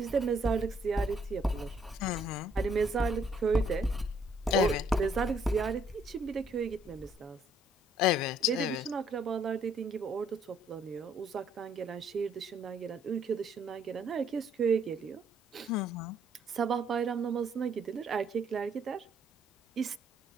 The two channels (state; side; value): normal; both; correlation 0.67